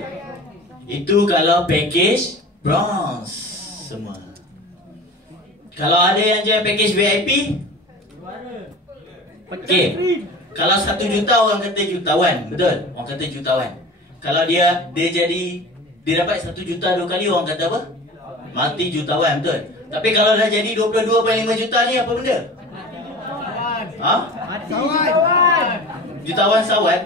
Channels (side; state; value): both; normal; correlation 0.37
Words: Itu kalau package bronze semua. Kalau ada yang jual package VIP, okey. Kalau 1 juta orang kata jutawan, betul? Orang kata jutawan. Kalau dia dapat 1 juta 2 kali, orang kata apa? Mati jutawan, betul? Tapi kalau dah jadi 22.5 juta ni apa benda? Ha? Mati jutawan. Jutawan